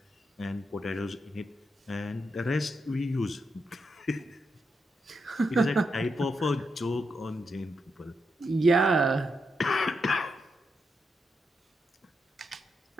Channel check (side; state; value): both; normal; correlation 0.84